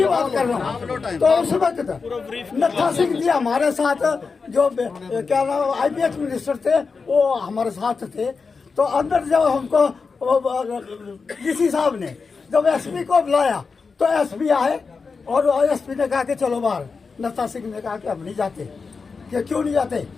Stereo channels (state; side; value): quieter; right; 4.8 dB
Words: बात कर रहा हूँ। तो उस वक्त नत्था सिंह जी हमारे साथ, जो क्या नाम IPS मिनिस्टर थे, वो हमारे साथ थे। तो अंदर जब हमको डीसी साहब ने जब SP को बुलाया तो SP आए और SP ने कहा कि चलो बाहर। नत्था सिंह ने कहा कि हम नहीं जाते। कि क्यों नहीं जाते?